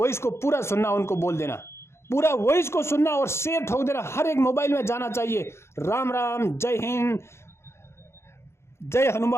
को पूरा सुनना, उनको बोल देना, पूरा वॉइस को सुनना और शेयर ठोक देना, हर एक मोबाइल में जाना चाहिए। राम राम, जय हिंद, जय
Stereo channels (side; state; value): right; late; 0.13 ms